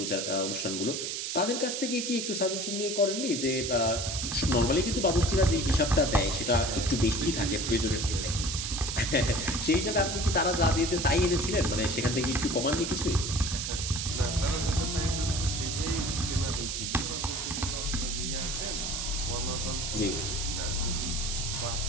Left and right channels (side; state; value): right; noise; hiss, 3 dB below the sound